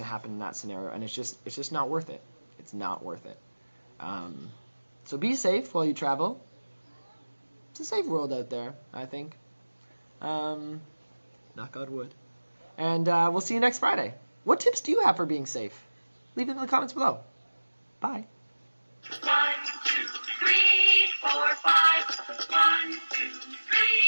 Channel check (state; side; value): inverted; both; correlation -1.00